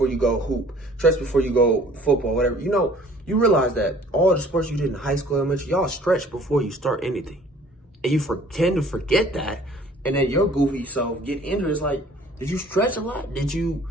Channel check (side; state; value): both; normal; correlation 0.53